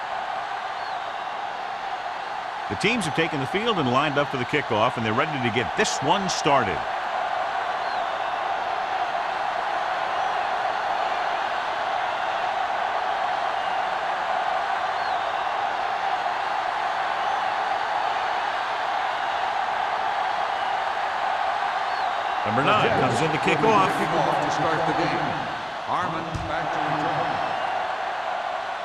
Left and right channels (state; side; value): identical; both; correlation 1.00